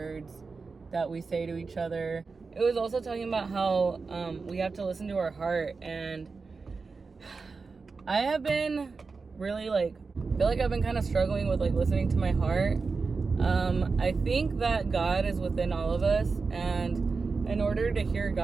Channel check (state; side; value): quieter; left; 4.5 dB